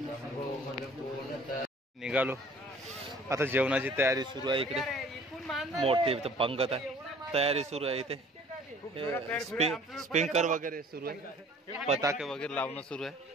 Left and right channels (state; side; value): normal; both; correlation 0.52